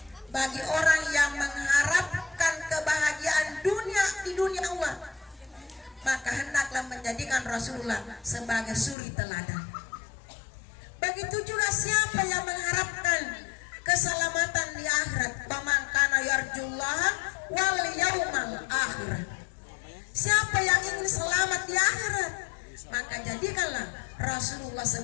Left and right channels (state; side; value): drops out; right; at 9.0 s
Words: bagi orang yang mengharapkan kebahagiaan dunia di dunia Allah, maka hendaklah menjadikan Rasulullah sebagai suri teladan. Begitu juga siapa yang mengharapkan keselamatan di akhirat, faman kana yarjullaha wal yaumal akhir. Siapa yang ingin selamat di akhirat, maka jadikanlah Rasulullah